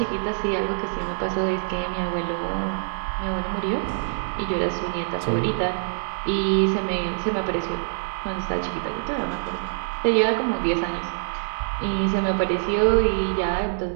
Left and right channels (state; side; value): silent; left; digital silence